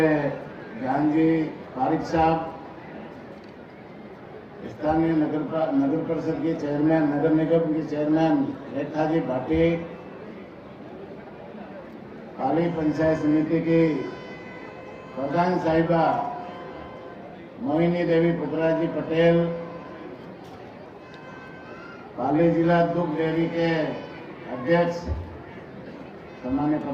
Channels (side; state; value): both; identical; correlation 1.00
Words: ज्ञान जी पारिक साहब, स्थानीय नगर परिषद के चेयरमैन, नगर निगम की चेयरमैन रेखा जी भाटी, पाली पंचायत समिति की प्रधान साहिबा मोहिनी देवी पुत्रा जी पटेल, पाली जिला दुग्ध डेयरी के अध्यक्ष सम्मान्य